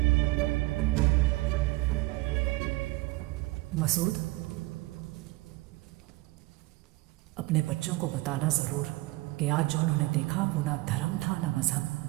मसूद, अपने बच्चों को बताना जरूर कि आज जो उन्होंने देखा वो ना धर्म था ना मजहब,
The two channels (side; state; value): left; quieter; 21.4 dB